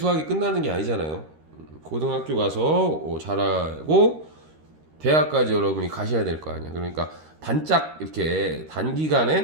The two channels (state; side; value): late; left; 13 ms